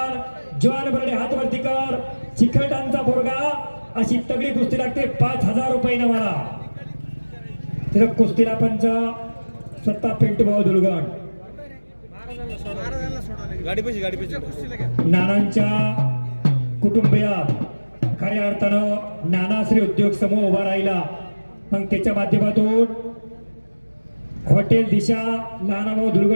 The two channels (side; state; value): both; inverted; correlation -1.00